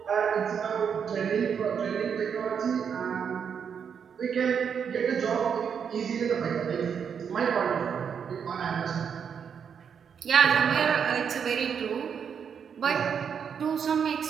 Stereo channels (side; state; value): left; quieter; 7.2 dB